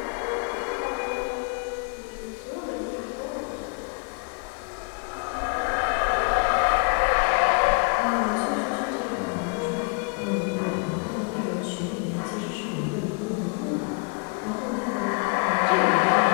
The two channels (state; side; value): quieter; right; 33.6 dB